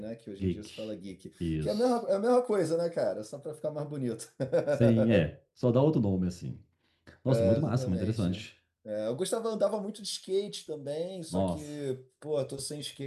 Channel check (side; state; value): both; identical; correlation 1.00